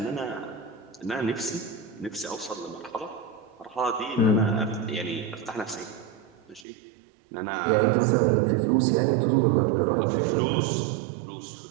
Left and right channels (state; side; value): drops out; left; at 6.7 s